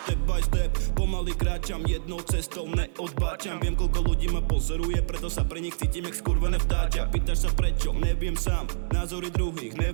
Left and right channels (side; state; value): left; silent; 61 dB below the other